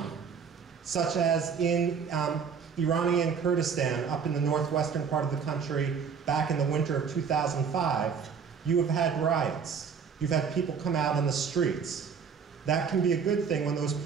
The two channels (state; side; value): quieter; left; 6.4 dB